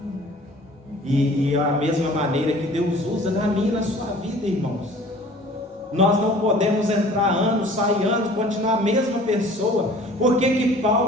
E a mesma maneira que Deus usa na minha e na sua vida, irmãos. Nós não podemos entrar anos, sair anos, continuar a mesma pessoa. Por que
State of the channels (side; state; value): both; normal; correlation 0.48